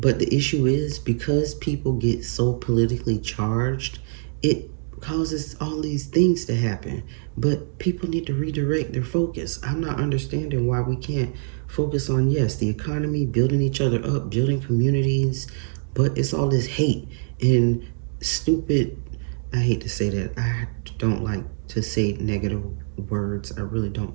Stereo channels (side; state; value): left; silent; digital silence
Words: the issue is because people get so politically charged, it causes all these things to happen. But people need to redirect their focus. I'm not understanding why we can't focus on, yes, the economy, building each other up, building communities, but it's all this hate and stupid. I hate to say that. I don't like to say negative words. I really don't